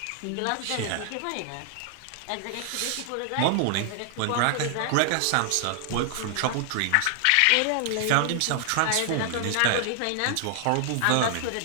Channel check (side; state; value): both; different; correlation 0.00